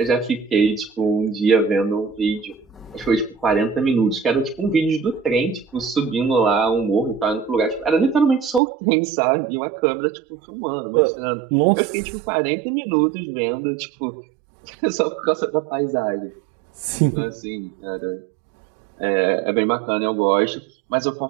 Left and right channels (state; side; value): drops out; left; at 8.6 s